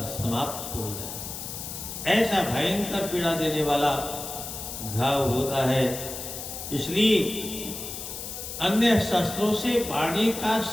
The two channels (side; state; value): left; noise; hiss, 8 dB below the sound